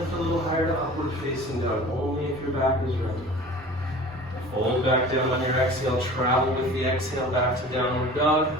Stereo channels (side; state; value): both; normal; correlation 0.41